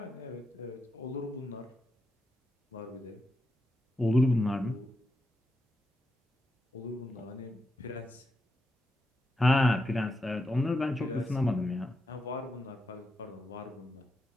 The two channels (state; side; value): normal; both; correlation 0.86